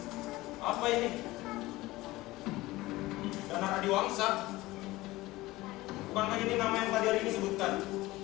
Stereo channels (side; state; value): right; quieter; 18.9 dB